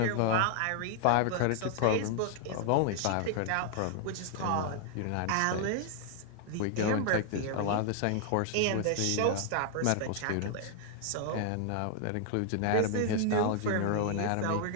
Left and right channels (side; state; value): both; different; correlation 0.00